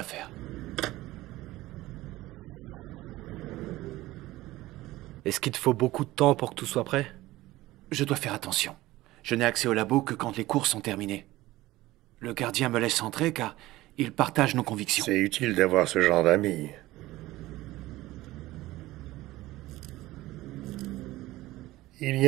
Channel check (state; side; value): quieter; left; 17.6 dB